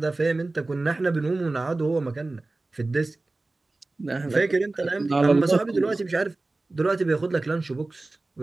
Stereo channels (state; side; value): quieter; left; 3.1 dB